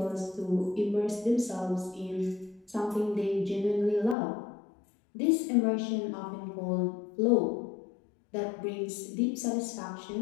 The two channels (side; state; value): right; drops out; at 4.2 s